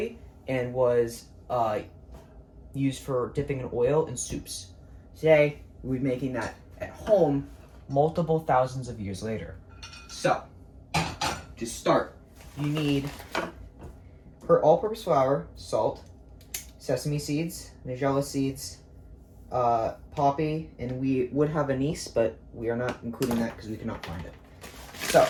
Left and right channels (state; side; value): identical; both; correlation 1.00